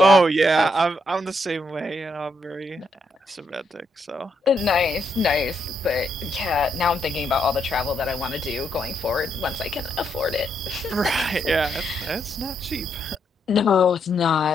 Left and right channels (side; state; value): both; normal; correlation 0.78